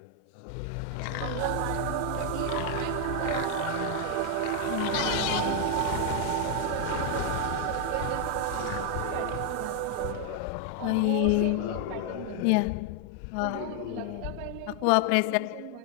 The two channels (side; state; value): both; different; correlation 0.00